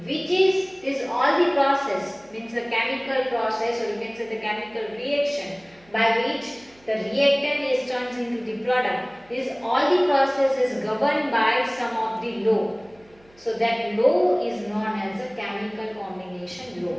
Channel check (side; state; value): right; noise; hum, 30 dB below the sound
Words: which is all the process, means the chemical process, or you can say the chemical reaction by which the reactant is turned into the product. This all the process is governed by some of the law. So that law is known as a chemical combination